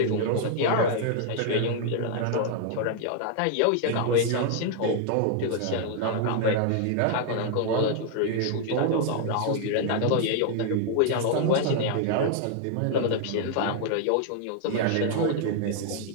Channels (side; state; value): both; different; correlation 0.00